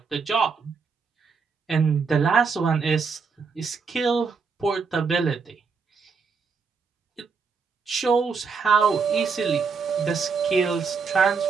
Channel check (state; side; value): quieter; left; 5.2 dB